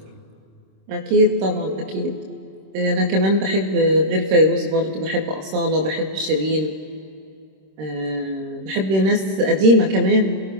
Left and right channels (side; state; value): left; late; 26 ms